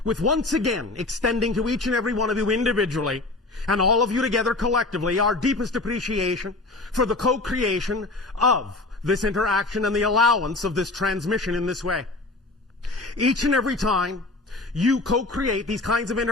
with once again extending to each and every one of you individually and all of you together collectively our deepest appreciation for the co-creation of this interaction and the allowance of this transmission in this way. Each and every time you co-create these kinds of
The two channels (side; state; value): right; quieter; 3.1 dB